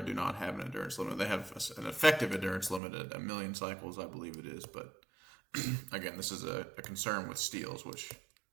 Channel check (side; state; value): left; drops out; at 2.8 s